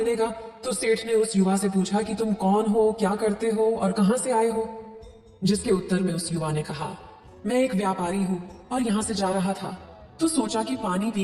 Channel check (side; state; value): both; identical; correlation 1.00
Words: तो सेठ ने उस युवा से पूछा कि तुम कौन हो, क्या करते हो और कहां से आए हो? जिसके उत्तर में उस युवा ने कहा, मैं एक व्यापारी हूं और यहां से जा रहा था, तो सोचा कि पानी